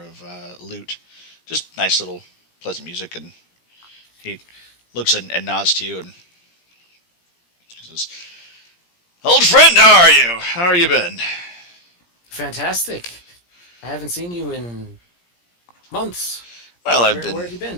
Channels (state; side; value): late; right; 17 ms